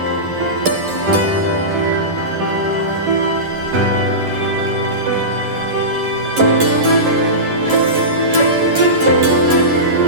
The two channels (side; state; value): left; late; 11 ms